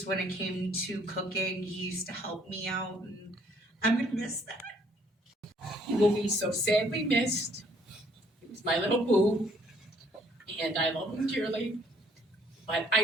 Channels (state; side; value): normal; both; correlation 0.64